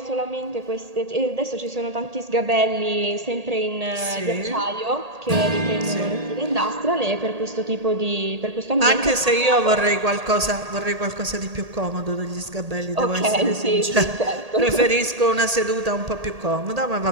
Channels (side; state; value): left; late; 1.8 ms